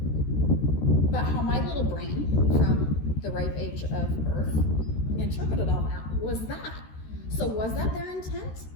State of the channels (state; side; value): late; right; 13 ms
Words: But how my little brain, from the ripe age of birth, interpreted all that was that. So was that their intent?